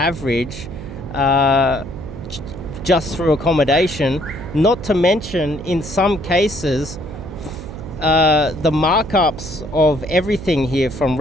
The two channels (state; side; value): noise; right; hum, 12 dB below the sound